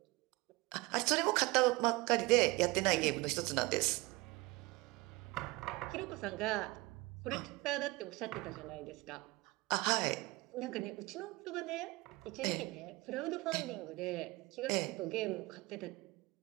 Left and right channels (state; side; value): quieter; left; 22.1 dB